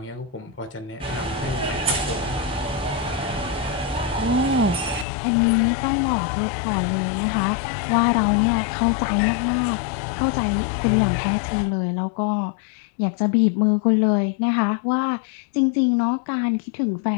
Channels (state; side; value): drops out; right; at 5.1 s